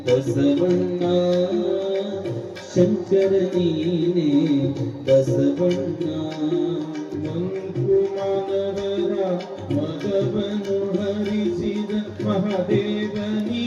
ಬಸವಣ್ಣ ಶಂಕರ ನೀನೆ ಬಸವಣ್ಣ ಮಂಕುಮಾನವರ ಮಗವನು ಹರಿಸಿದ ಮಹಾದೇವ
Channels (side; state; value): both; identical; correlation 1.00